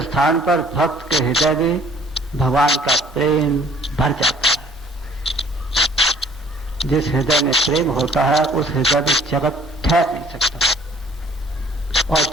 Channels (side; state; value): both; normal; correlation 0.56